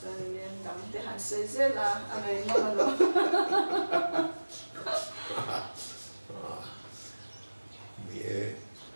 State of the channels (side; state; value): both; inverted; correlation -1.00